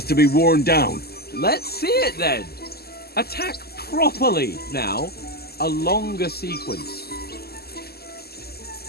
to be worn down. Let's see it then. Attack properly now. A longer sequence.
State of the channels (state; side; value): late; right; 0.46 ms